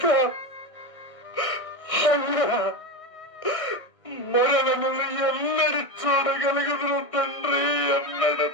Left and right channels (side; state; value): right; late; 1.6 ms